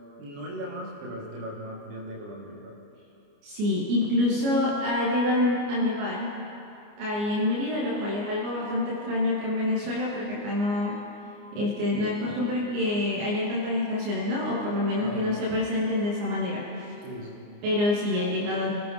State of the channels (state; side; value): late; left; 29 ms